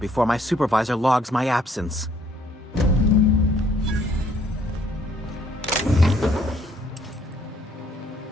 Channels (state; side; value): normal; both; correlation 0.65